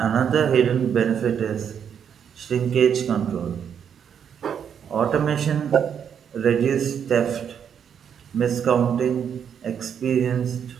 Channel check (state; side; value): quieter; left; 8.0 dB